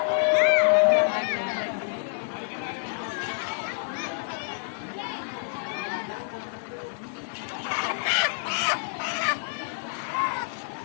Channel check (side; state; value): right; silent; digital silence